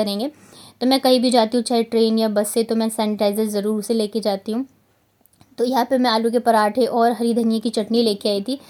तो मैं कहीं भी जाती हूँ चाहे ट्रेन या बस से, तो मैं सैनिटाइज़र ज़रूर से लेके जाती हूँ। तो यहाँ पे मैं आलू के पराठे और हरी धनिया की चटनी लेके आई थी।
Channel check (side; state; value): both; identical; correlation 1.00